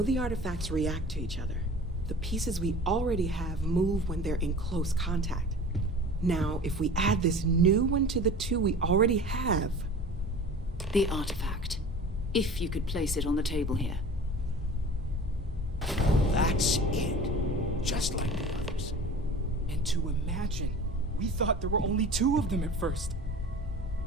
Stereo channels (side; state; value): both; normal; correlation 0.39